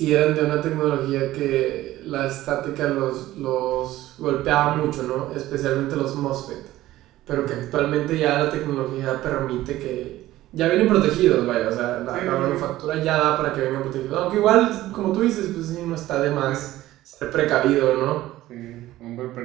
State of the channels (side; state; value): left; quieter; 15.5 dB